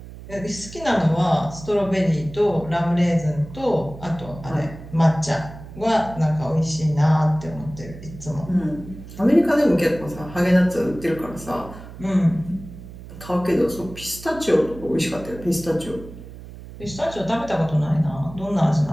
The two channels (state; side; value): noise; right; hum, 15 dB below the sound